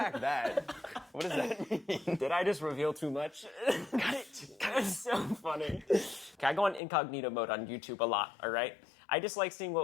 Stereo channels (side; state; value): right; drops out; at 6.8 s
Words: that. What does that mean? Did I just reveal too much? That's so funny. Okay, I go on incognito mode on YouTube a lot, all right? I just like seeing